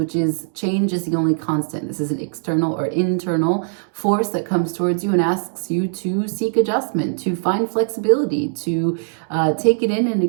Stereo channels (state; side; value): silent; left; digital silence